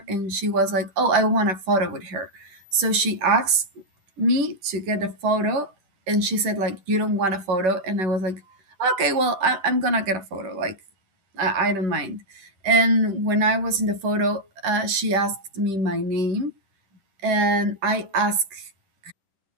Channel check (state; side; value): late; left; 10 ms